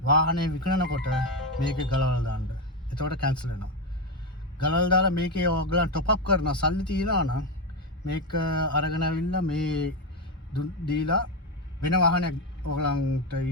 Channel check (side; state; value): both; normal; correlation 0.10